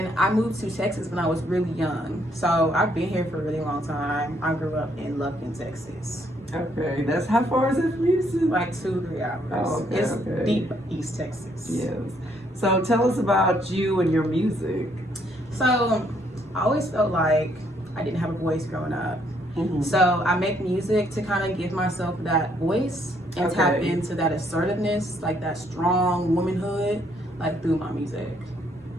I moved to Texas when I was really young. So I've been here for a really long time. I grew up in Lufkin, Texas. Okay, that's how far is it from Houston? Like 2-3 hours. Oh, okay, It's okay. deep East Texas. Yes. So tell us about you and your music. So I always felt like I didn't have a voice growing up. Mm-hmm. So I make music to kind of give myself that voice and tap into that assertiveness, like that strong womanhood, like through my music.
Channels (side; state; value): both; normal; correlation 0.69